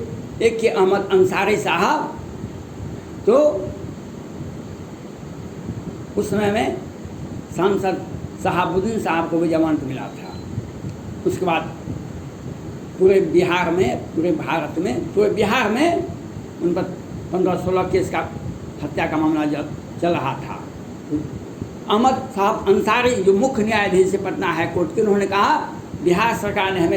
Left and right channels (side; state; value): both; identical; correlation 1.00